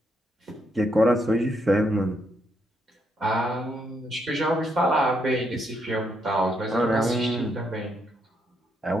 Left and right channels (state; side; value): normal; both; correlation 0.76